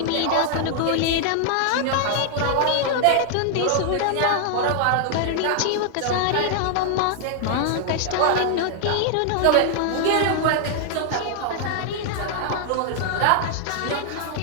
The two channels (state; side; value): different; both; correlation 0.00